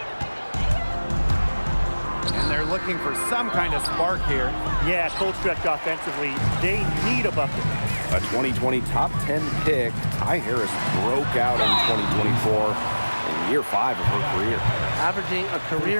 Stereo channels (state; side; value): inverted; both; correlation -1.00